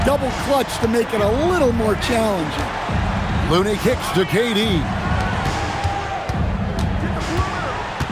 double clutch to make it a little more challenging. Looney kicks to KD.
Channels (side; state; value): both; identical; correlation 1.00